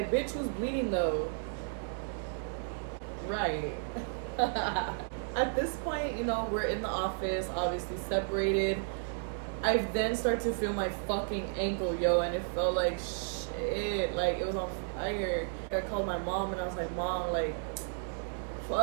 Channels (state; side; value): silent; left; digital silence